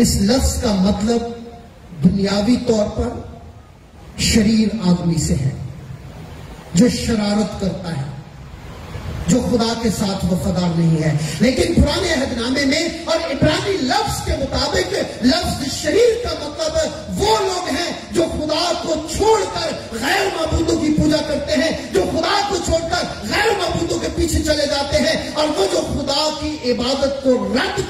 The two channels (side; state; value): both; identical; correlation 1.00